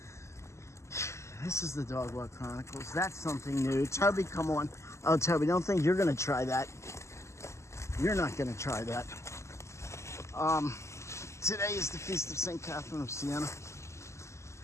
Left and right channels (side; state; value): right; late; 0.13 ms